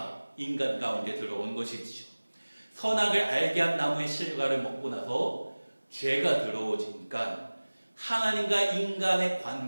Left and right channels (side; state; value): both; inverted; correlation -1.00